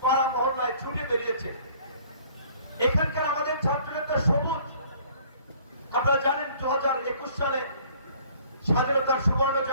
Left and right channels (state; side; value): inverted; both; correlation -0.55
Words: পাড়া মহল্লায় ছুটে বেরিয়েছে। এখানকার আমাদের ছাত্র নেতা সবুজ, আপনারা জানেন 2021 সালে স্বাধীনতার সুবর্ণ